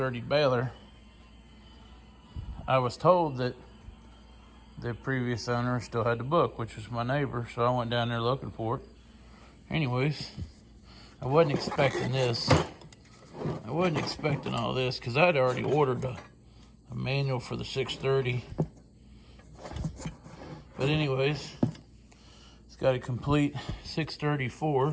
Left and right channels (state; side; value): identical; both; correlation 1.00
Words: baler, I was told that the previous owner still had the book, which was my neighbor, so I went down there looking for it. Anyways, I wasn't expecting this. I wasn't expecting all this because I'd already ordered a manual for the 630. But anyways, it's got a complete